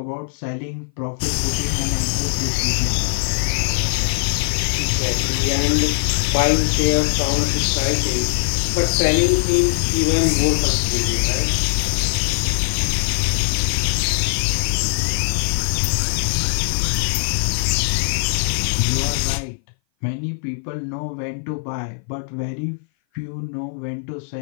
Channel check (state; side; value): silent; right; 59 dB below the other